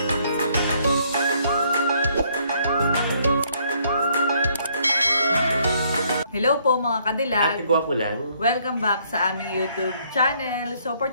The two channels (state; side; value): inverted; both; correlation -0.67